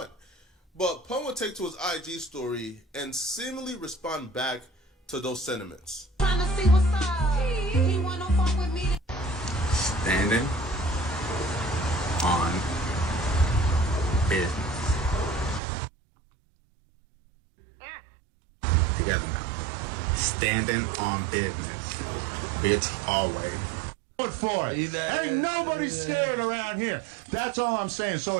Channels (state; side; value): drops out; left; at 15.6 s